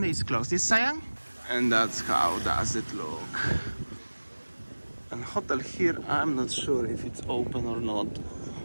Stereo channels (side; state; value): both; inverted; correlation -1.00